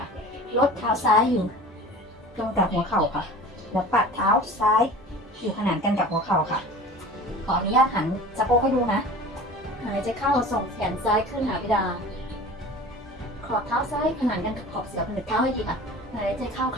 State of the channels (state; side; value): normal; both; correlation 0.39